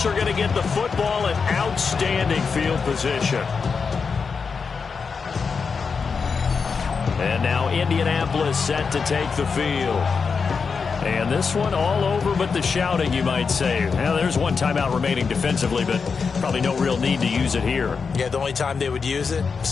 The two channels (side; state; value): right; quieter; 5.4 dB